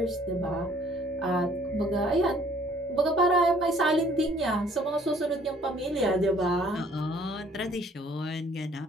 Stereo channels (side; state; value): both; normal; correlation 0.59